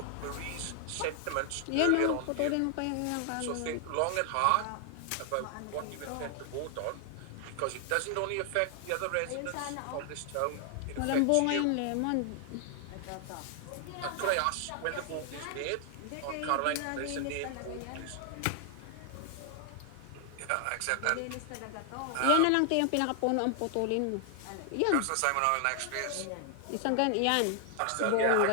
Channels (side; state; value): both; different; correlation 0.00